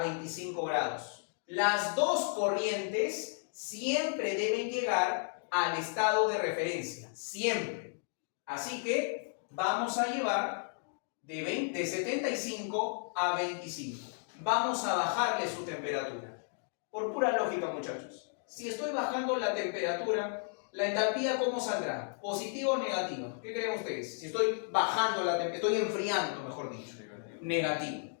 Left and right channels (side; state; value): right; silent; 55 dB below the other